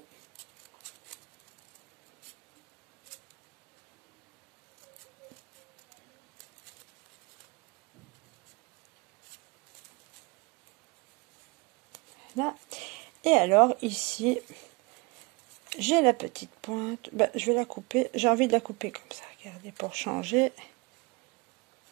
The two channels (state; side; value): quieter; left; 27.4 dB